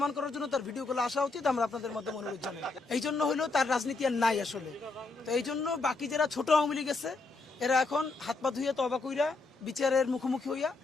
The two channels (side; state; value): right; quieter; 3.6 dB